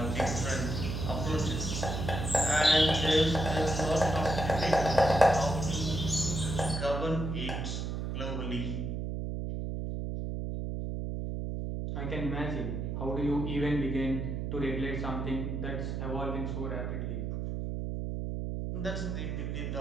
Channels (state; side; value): noise; right; hum, 3 dB below the sound